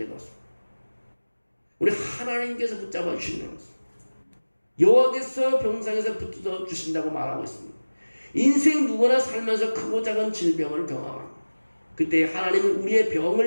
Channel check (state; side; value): inverted; both; correlation -1.00